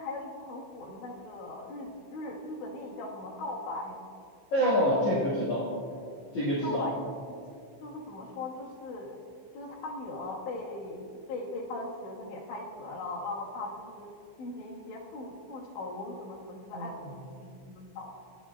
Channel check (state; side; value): late; right; 15 ms